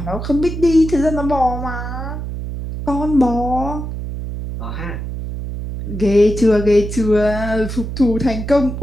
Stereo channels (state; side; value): noise; right; hum, 6 dB below the sound